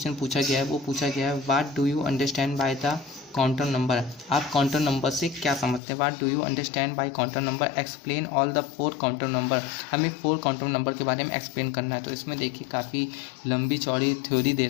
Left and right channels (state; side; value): drops out; right; at 5.8 s